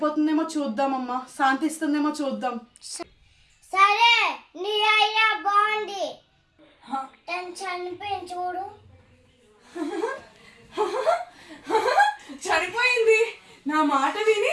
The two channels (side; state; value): both; identical; correlation 1.00